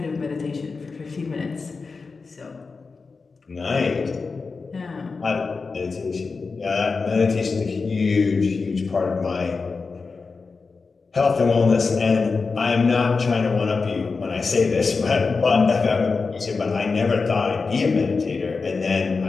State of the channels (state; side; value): quieter; right; 4.5 dB